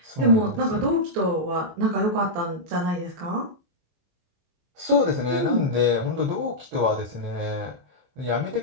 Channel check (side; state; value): left; late; 23 ms